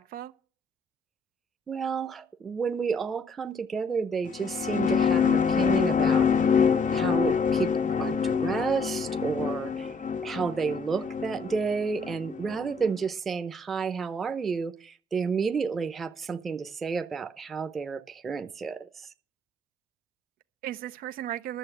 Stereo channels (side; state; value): both; normal; correlation 0.65